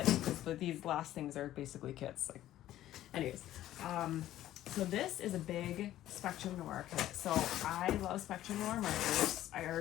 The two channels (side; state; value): right; quieter; 13.5 dB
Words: because these last things are basically kits. Like, anyways, so this is a big Spectrum Noir kit. So I love Spectrum Noir markers. I